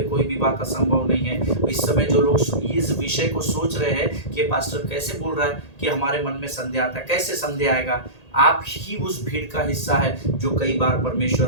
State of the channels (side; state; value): right; late; 1.8 ms